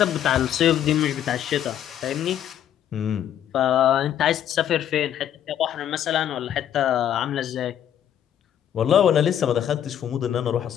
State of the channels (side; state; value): right; quieter; 10.3 dB